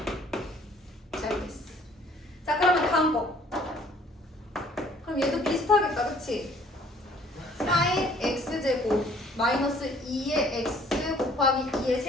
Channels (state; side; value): normal; both; correlation 0.57